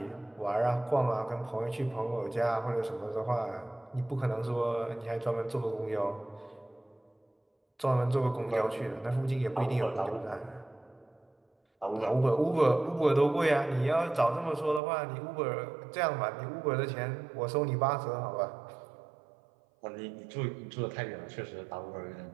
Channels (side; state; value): left; drops out; at 14.8 s